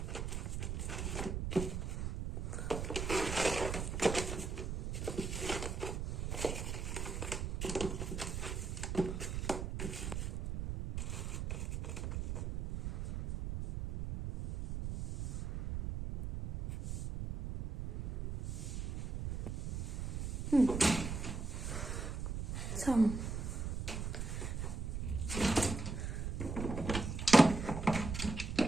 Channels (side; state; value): right; noise; rumble, 3 dB below the sound